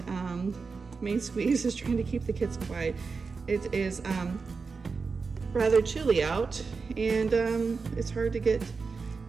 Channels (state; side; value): quieter; left; 4.7 dB